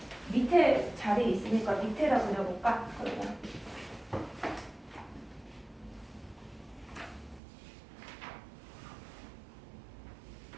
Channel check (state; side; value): drops out; left; at 7.4 s